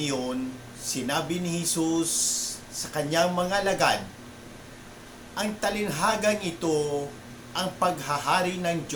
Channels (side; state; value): both; identical; correlation 1.00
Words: sinabi ni Jesus sa kanyang mga alagad, ang talinhagang ito, ang paghahari ng